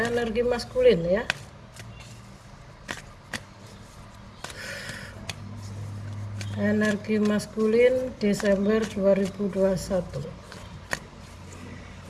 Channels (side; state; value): both; identical; correlation 1.00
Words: energi maskulin ya. Energi maskulin Desember 2021.